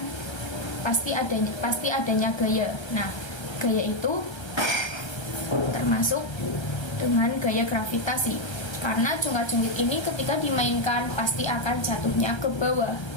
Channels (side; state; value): right; late; 1.3 ms